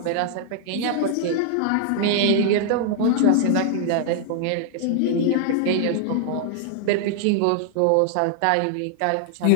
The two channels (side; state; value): both; different; correlation 0.00